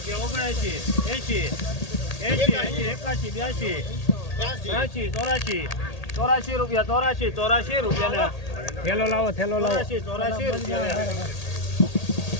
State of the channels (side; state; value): right; late; 1.8 ms